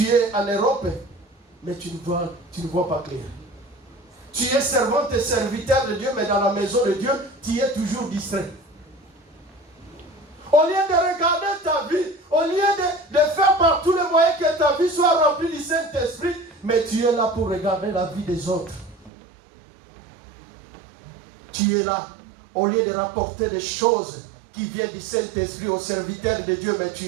es en Europe, mais tu ne vois pas clair. Tu es servante et serviteur de Dieu, mais dans la maison de Dieu, tu es toujours distrait. Au lieu de regarder ta vie, au lieu de faire par tous les moyens que ta vie soit remplie du Saint-Esprit, mais tu es là pour regarder la vie des autres. Tu es là, au lieu de rapporter des choses qui viennent du Saint-Esprit aux serviteurs de Dieu, mais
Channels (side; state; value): left; drops out; at 19.1 s